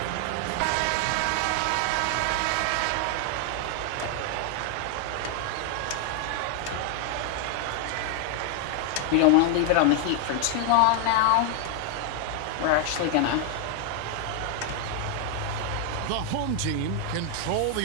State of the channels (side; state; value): both; different; correlation 0.00